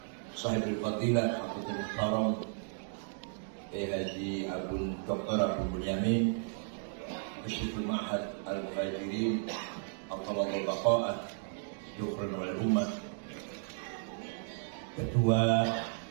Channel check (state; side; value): silent; left; digital silence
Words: Sahibul fadilah Hafidzul Muhtaram Haji Abun Dr. Abu Bunyamin Musyiful Ma'had Al-Muhajirin Al-Talabul Baqa'ah Dukran wal Ummah, Ketua